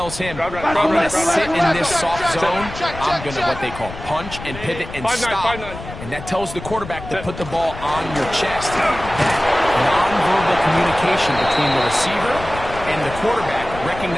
him, I'm going to sit in this soft zone. I'm going to what they call punch and pivot and stop. And that tells the quarterback to put the ball on your chest. That nonverbal communication between the receiver and the quarterback,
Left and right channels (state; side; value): noise; left; rumble, 12 dB below the sound